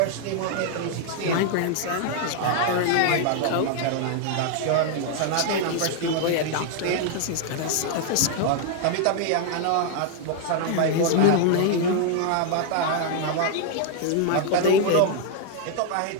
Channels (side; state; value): both; different; correlation 0.00